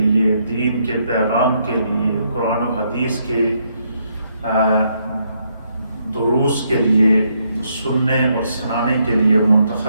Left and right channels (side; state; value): both; inverted; correlation -0.75